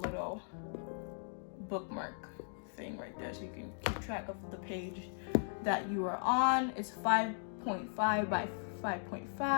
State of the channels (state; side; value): silent; right; digital silence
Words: bookmark thing right there so you can keep track of the page that you are on. It's 5.5 by